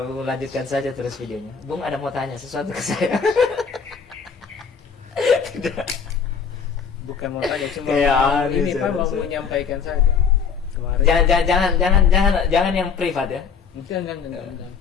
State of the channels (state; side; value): quieter; right; 6.2 dB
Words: saja terus videonya. Bung ada mau tanya sesuatu ke saya? Tidak. Bukan mau tanya, cuma ini Pak mau menyampaikan saja. Kemarin. Jangan yang privat ya. Jangan